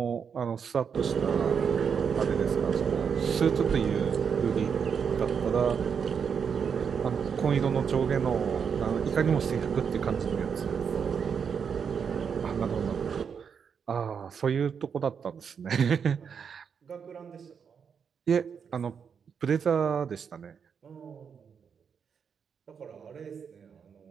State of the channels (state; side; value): quieter; left; 6.8 dB